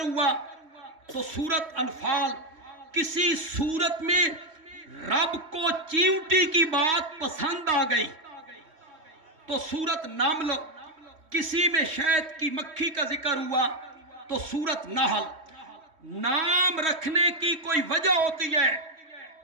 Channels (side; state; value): left; late; 3.2 ms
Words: تو سورت انفال۔ کسی سورت میں رب کو چیونٹی کی بات پسند آ گئی تو سورت نمل، کسی میں شہد کی مکھی کا ذکر ہوا تو سورت نحل۔ نام رکھنے کی کوئی وجہ ہوتی ہے۔